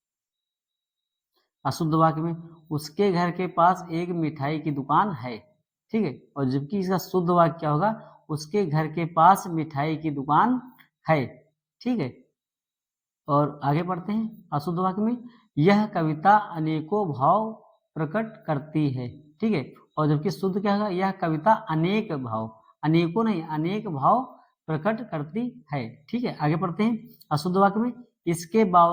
अशुद्ध वाक्य में, उसके घर के पास एक मिठाई की दुकान है। ठीक है, और जबकि इसका शुद्ध वाक्य क्या होगा, उसके घर के पास मिठाई की दुकान है। ठीक है, और आगे बढ़ते हैं अशुद्ध वाक्य में, यह कविता अनेकों भाव प्रकट करती है। ठीक है, और जबकि शुद्ध क्या होगा, यह कविता अनेक भाव, अनेकों नहीं अनेक भाव प्रकट करती है। ठीक है, आगे बढ़ते हैं अशुद्ध वाक्य में, इसके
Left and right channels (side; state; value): both; identical; correlation 1.00